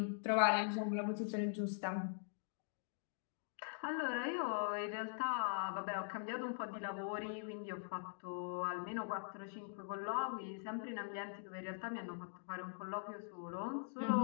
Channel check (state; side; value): silent; right; digital silence